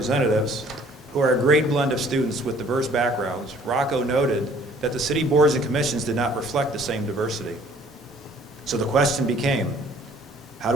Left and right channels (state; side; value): normal; both; correlation 0.56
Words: who are a great blend of students with diverse backgrounds, Rocco noted that the city boards and commissions did not reflect the same diversity. So the question became, how